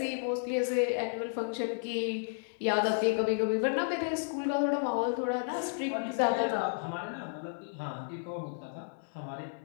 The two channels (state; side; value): silent; right; digital silence